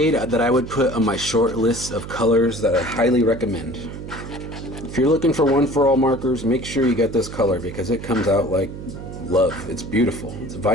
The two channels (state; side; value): noise; right; hum, 10 dB below the sound